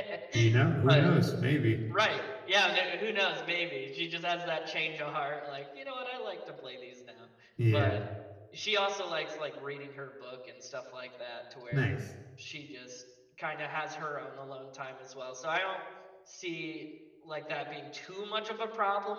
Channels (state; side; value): identical; both; correlation 1.00